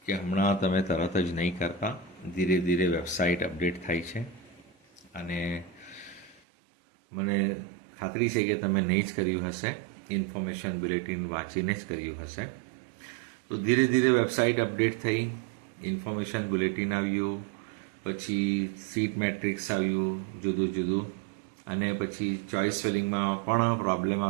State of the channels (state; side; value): drops out; left; at 6.4 s